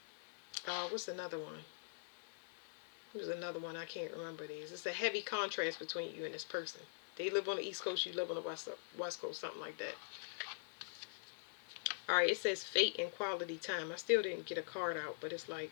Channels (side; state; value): right; silent; digital silence